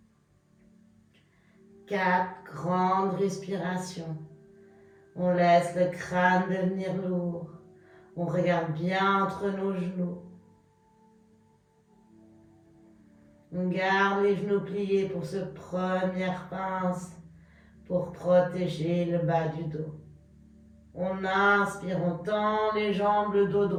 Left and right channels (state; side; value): identical; both; correlation 1.00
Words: 4 grandes respirations. On laisse le crâne devenir lourd. On regarde bien entre nos genoux. On garde les genoux pliés pour cette première pince, pour protéger le bas du dos. On inspire, on tend les jambes, le dos